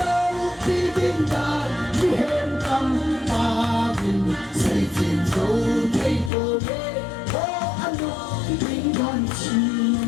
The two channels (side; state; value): right; drops out; at 6.3 s